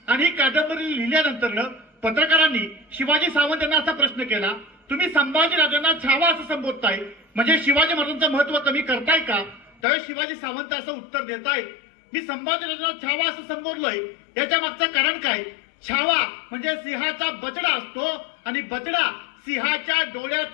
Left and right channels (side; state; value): right; drops out; at 9.8 s